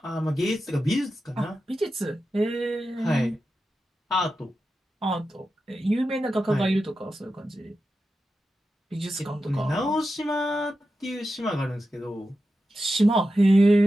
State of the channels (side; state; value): both; normal; correlation 0.91